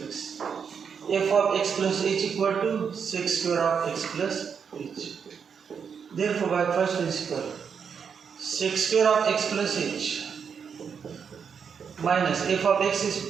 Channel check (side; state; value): left; quieter; 6.7 dB